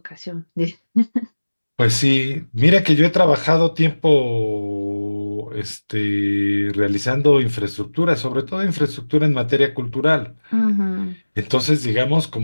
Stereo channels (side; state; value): both; inverted; correlation -1.00